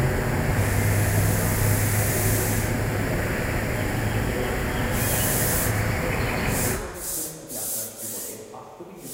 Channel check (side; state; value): both; identical; correlation 1.00